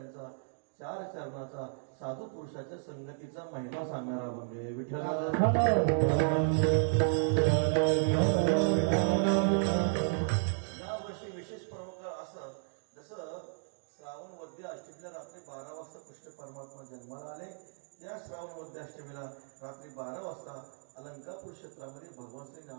4 चरणाचा साधू पुरुषाच्या संगतीचा महिमा सांगणारा म्हणजे विठ्ठल। या वर्षी विशेष प्रमुख असं जसं श्रावण वद्य अष्टमीला रात्री 12 वाजता कृष्ण परमात्मा जन्माला आले, त्या श्रावण वद्य अष्टमीला रात्री 12 वाजता अलंकापूर क्षेत्रामध्ये भगवान श्री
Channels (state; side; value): silent; left; digital silence